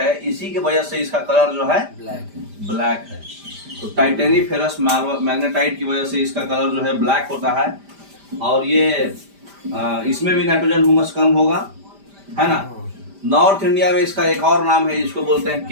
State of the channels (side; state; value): left; late; 5.0 ms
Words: इसी की वजह से इसका कलर जो है ब्लैक है। तो टाइटेनीफेरस मैग्नेटाइट की वजह से इसका कलर जो है ब्लैक होता है। और ये इसमें भी नाइट्रोजन ह्यूमस कम होगा, है ना। नॉर्थ इंडिया में इसका एक और नाम है, जिसको बोलते हैं